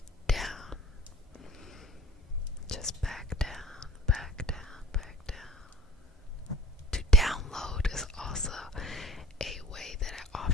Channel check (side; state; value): both; normal; correlation 0.47